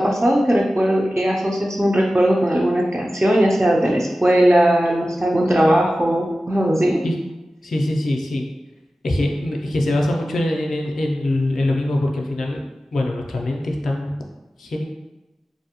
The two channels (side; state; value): both; normal; correlation 0.94